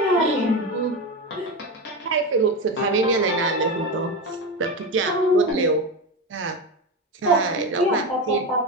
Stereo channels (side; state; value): both; normal; correlation 0.18